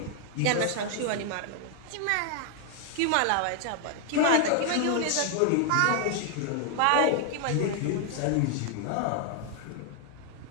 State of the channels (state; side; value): different; both; correlation 0.00